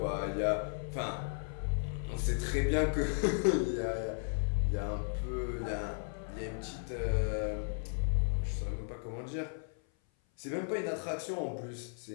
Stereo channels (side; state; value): right; silent; 54 dB below the other